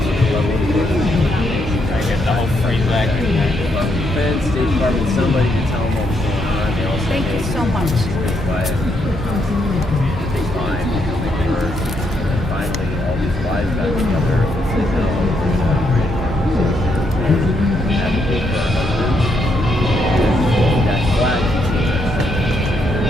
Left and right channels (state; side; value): normal; both; correlation 0.77